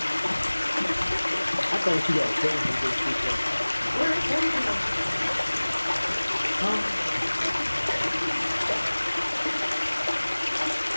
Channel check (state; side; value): inverted; both; correlation -1.00